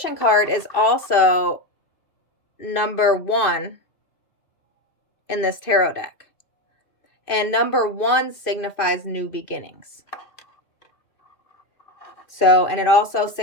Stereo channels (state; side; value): late; right; 2.5 ms